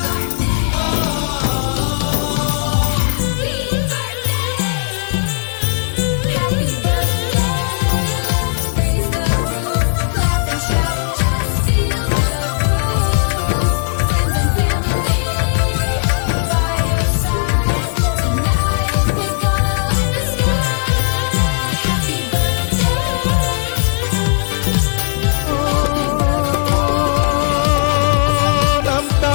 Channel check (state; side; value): silent; right; digital silence